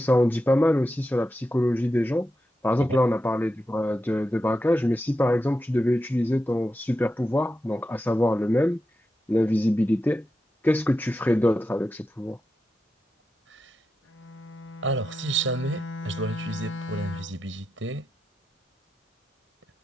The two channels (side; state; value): both; normal; correlation 0.89